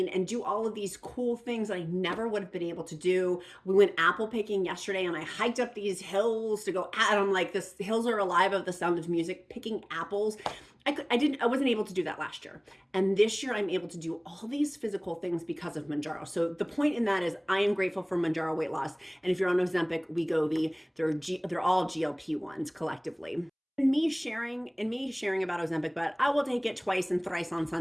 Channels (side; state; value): both; identical; correlation 1.00